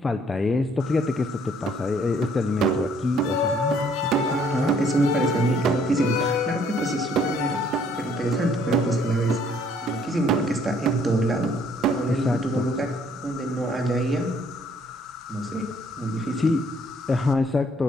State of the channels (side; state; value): both; normal; correlation 0.63